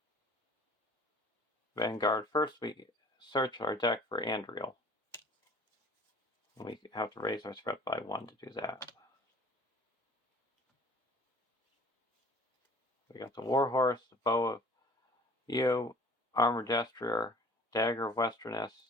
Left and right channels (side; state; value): both; normal; correlation 0.49